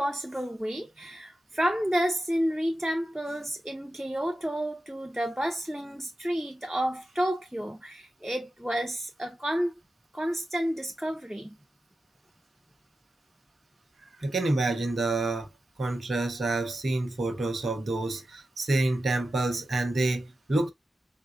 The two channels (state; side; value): normal; both; correlation 0.92